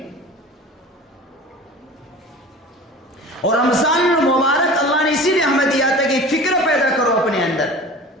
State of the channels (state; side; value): normal; both; correlation 0.38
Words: اور رمضان المبارک اللہ نے اسی لیے ہمیں دیا تھا کہ فکر پیدا کرو اپنے اندر،